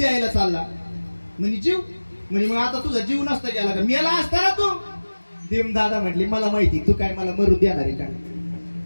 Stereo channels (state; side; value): inverted; both; correlation -1.00